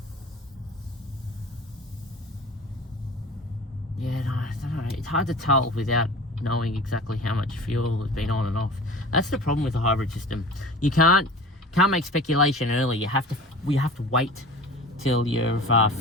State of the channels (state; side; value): normal; both; correlation 0.39